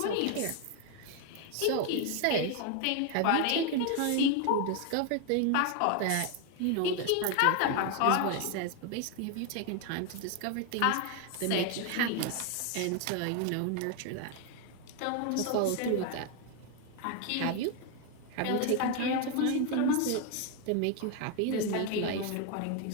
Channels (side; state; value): both; different; correlation 0.01